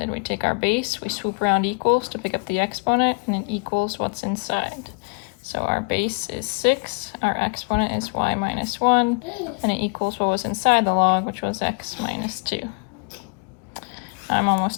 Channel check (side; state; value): right; quieter; 34.0 dB